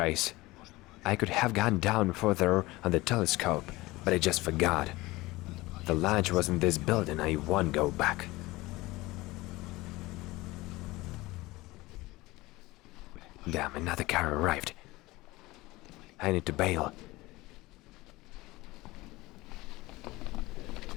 I could have gone down further on the telescope, but I just forgot. The launch was in this building, I won't go back. Damn, another car arrived. I need to bail.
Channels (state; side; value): quieter; right; 20.2 dB